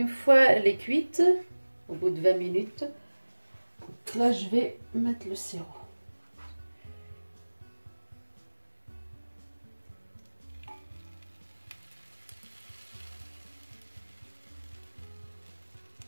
fois elle est cuite, au bout de 20 minutes, là je vais mettre le sirop.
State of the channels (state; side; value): inverted; both; correlation -1.00